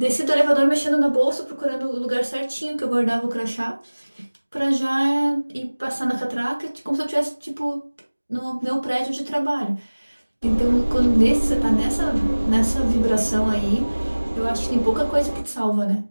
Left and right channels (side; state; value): both; inverted; correlation -1.00